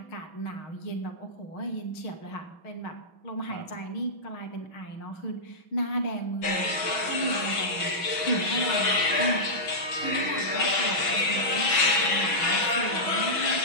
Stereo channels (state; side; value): late; right; 6.1 ms